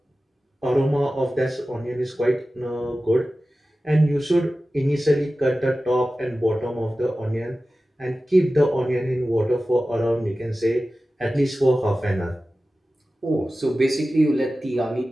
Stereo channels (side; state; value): both; normal; correlation 0.95